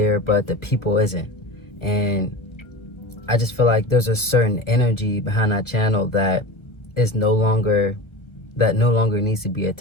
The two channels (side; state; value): right; late; 1.3 ms